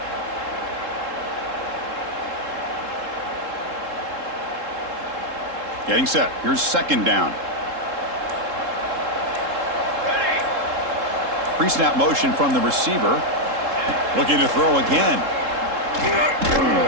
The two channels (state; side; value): late; left; 3.7 ms